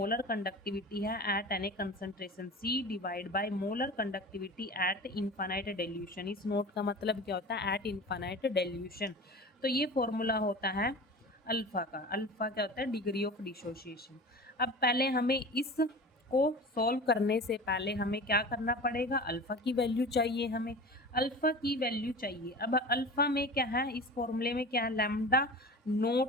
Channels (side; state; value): both; normal; correlation 0.35